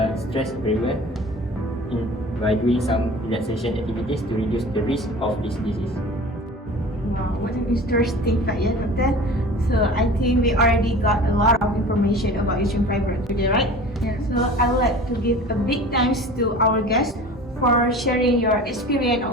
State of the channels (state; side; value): normal; both; correlation 0.40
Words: stress very well by doing some relaxation activities to reduce the risk of this disease. Wow, what an interesting fact, yeah, Doctor. So I think we already got a lot of information about uterine fibroids today, right? Yeah. So I would like to give a big thanks to our guests for sharing your experience and